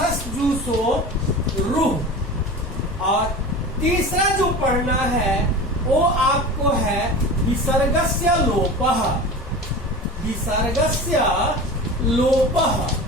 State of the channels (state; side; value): normal; both; correlation 0.33